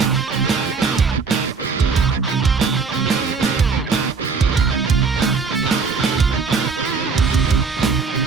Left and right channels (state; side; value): quieter; left; 5.0 dB